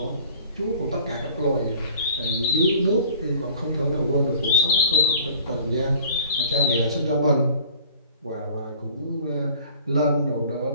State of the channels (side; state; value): both; inverted; correlation -0.49